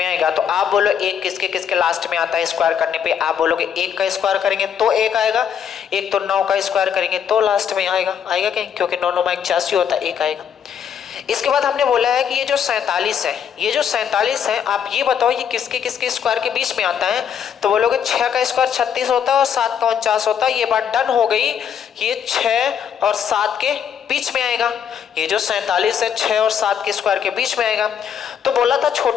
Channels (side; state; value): right; quieter; 8.2 dB